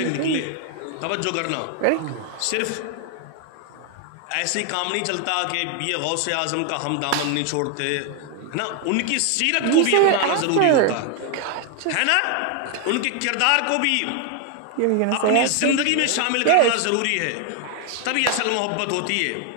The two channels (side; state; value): both; different; correlation 0.00